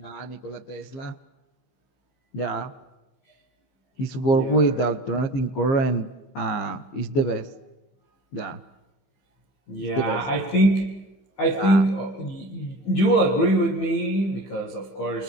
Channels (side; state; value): right; late; 15 ms